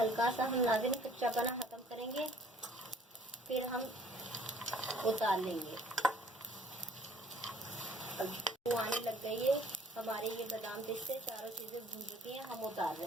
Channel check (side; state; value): both; normal; correlation 0.57